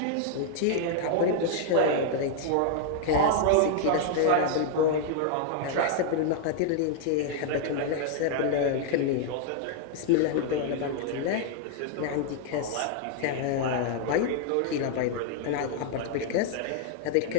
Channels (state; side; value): different; both; correlation 0.00